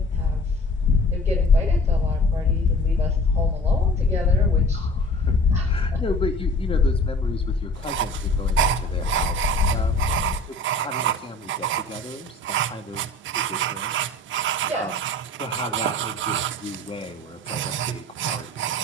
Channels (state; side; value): normal; both; correlation 0.45